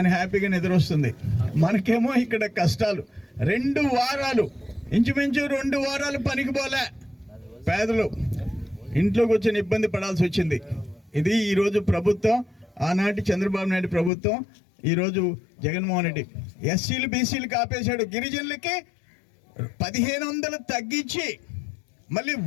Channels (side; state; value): right; drops out; at 14.1 s